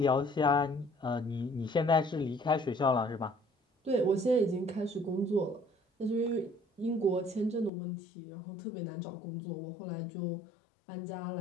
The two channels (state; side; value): drops out; right; at 7.7 s